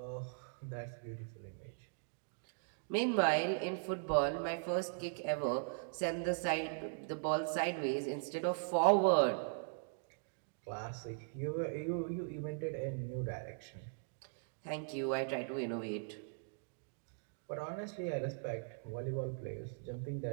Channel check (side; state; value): left; silent; digital silence